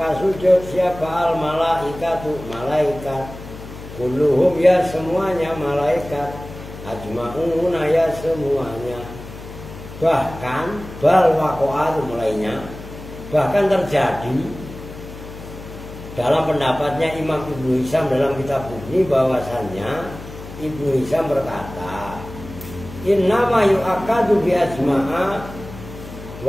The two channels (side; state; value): left; noise; hum, 14 dB below the sound